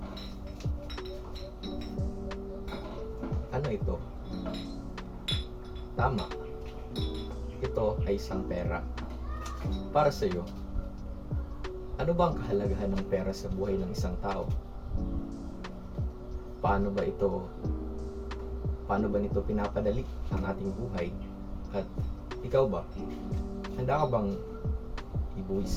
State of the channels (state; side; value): identical; both; correlation 1.00